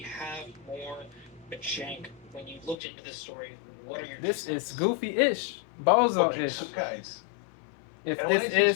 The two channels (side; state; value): right; drops out; at 2.8 s